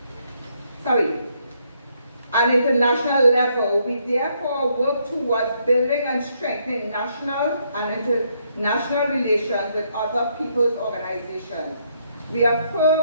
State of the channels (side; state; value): both; inverted; correlation -0.73